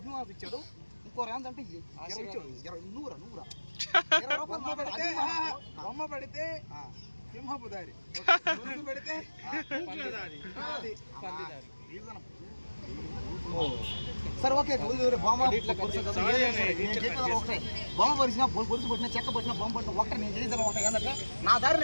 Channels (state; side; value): inverted; both; correlation -1.00